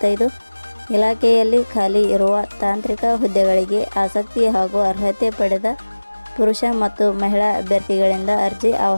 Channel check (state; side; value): inverted; both; correlation -1.00